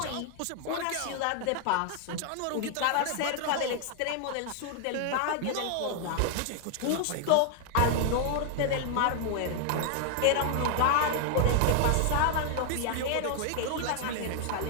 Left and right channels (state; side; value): different; both; correlation 0.00